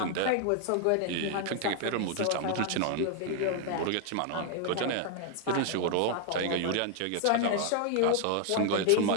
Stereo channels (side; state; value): both; different; correlation 0.00